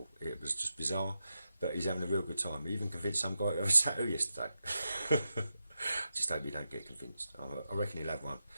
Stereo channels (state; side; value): inverted; both; correlation -0.88